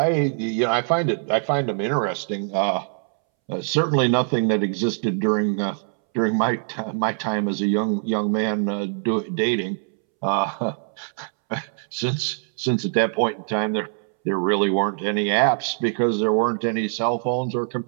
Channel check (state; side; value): silent; left; 63 dB below the other